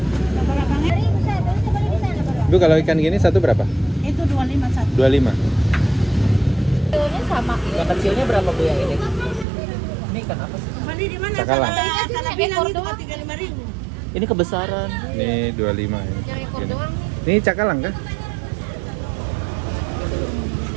Bu kalau ikan gini satu berapa? Itu 25 satu. 25. Ini sama. Yang kecilnya berapa Bu yang ini? Ini ikan apa sih? Mandi di mana? Cakalang. Salah bilang itu 35.000. Ini kebesaran. Ini 25 ini. Yang ekor Gini. doang. Ini cakalang kah?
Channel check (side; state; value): left; drops out; at 9.5 s